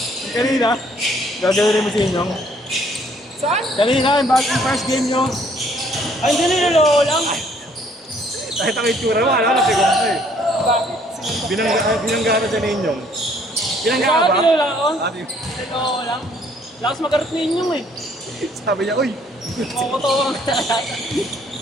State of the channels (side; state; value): both; normal; correlation 0.63